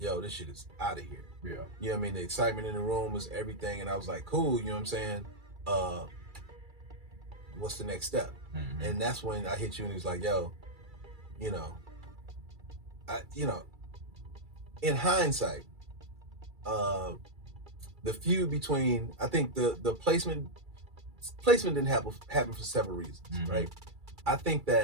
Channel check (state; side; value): late; left; 2.3 ms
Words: this shit is out of here. Yeah. You know what I mean? The excitement in the room was everything. And I was like, cool, you know what I'm saying? What's the next step? And that's when I hit you and he was like, yo, you know, in hindsight, the feud between, I think the placement didn't happen for several reasons, right? I think